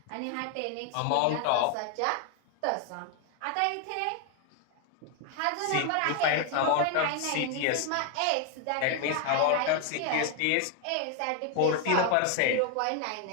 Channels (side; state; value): both; different; correlation 0.00